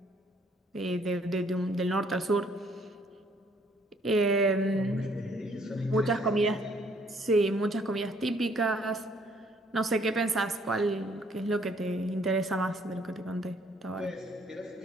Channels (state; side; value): normal; both; correlation 0.64